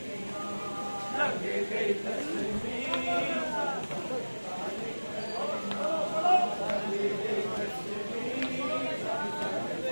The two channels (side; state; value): both; inverted; correlation -1.00